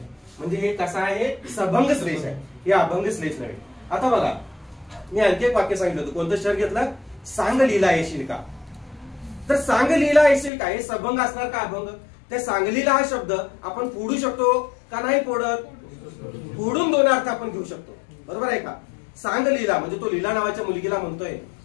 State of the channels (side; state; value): right; drops out; at 10.5 s